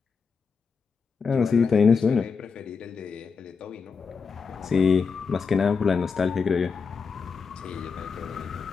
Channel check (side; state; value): right; quieter; 5.4 dB